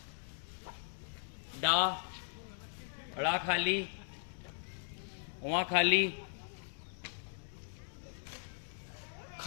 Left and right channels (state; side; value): silent; right; digital silence